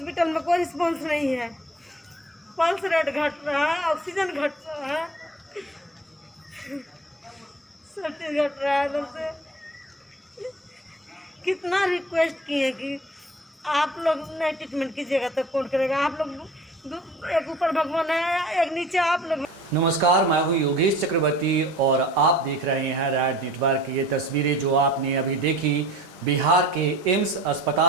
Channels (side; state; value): both; normal; correlation 0.45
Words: में कोई रिस्पॉन्स नहीं है। पल्स रेट घट रहा है, ऑक्सीजन घट रहा है, सब चीज घट रहा है। इधर से कितना रिक्वेस्ट किए कि आप लोग नहीं ट्रीटमेंट कीजिएगा तो कौन करेगा? आप लोग एक ऊपर भगवान है, एक नीचे आप लोग। नमस्कार, मैं हूं योगेश चक्रवर्ती और आप देख रहे हैं रैड नेटवर्क। ये तस्वीरें जो आपने अभी देखी बिहार के एम्स